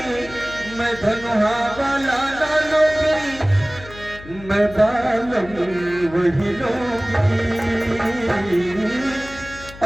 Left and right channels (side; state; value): left; noise; hum, 17 dB below the sound